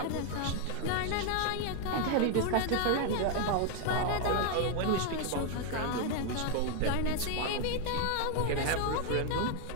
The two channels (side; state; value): both; different; correlation 0.01